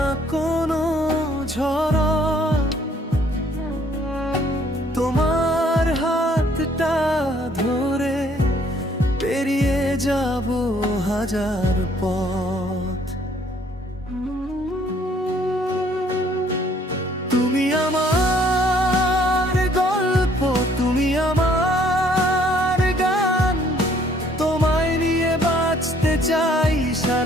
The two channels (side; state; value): both; normal; correlation 0.62